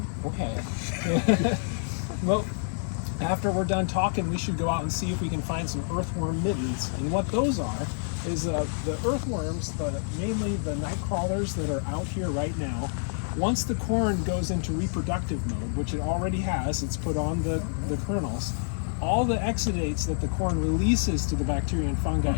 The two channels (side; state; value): right; silent; digital silence